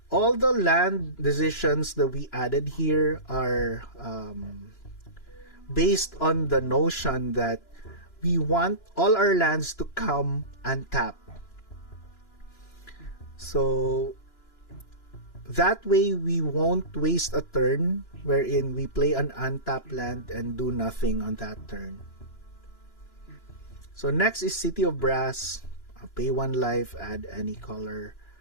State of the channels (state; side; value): late; right; 3.0 ms